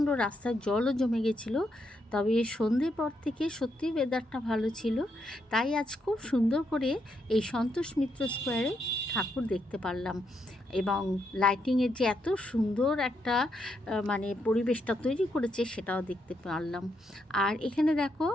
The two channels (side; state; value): both; normal; correlation 0.79